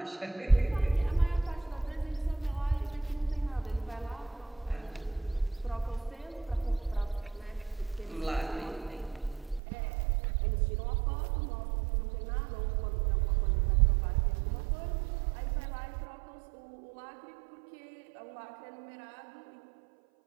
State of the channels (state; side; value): drops out; left; at 9.6 s